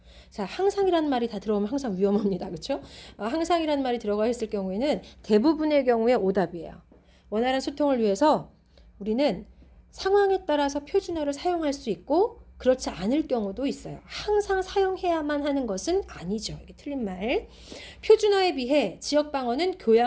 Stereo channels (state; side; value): identical; both; correlation 1.00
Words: 자, 항상이라는 말이 다 들어오면 항상 위험합니다. 그렇죠? 항상이라는 말이 들어가 있을 경우에는 대부분의 경우에 오답이에요. 원활한 소통을 위해서 우리는 상황에 따라서 표준어를 사용할 수 있고 그렇지 않을 경우도 있어요. 항상 사용해야만 하는 것은 아니죠. 이게 틀린 말. 표준어에 비해 지역방언은